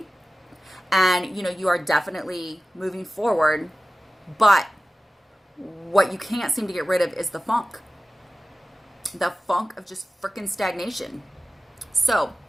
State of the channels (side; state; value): both; normal; correlation 0.96